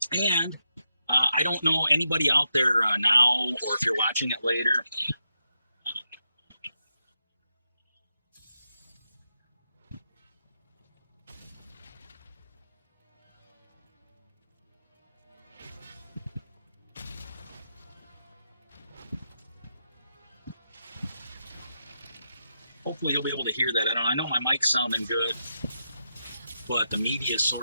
And I don't know anybody out there now, or if you're watching it later. Hopefully you'll be able to hear that. I know my mic's sounding good, but the media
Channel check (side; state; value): both; inverted; correlation -0.85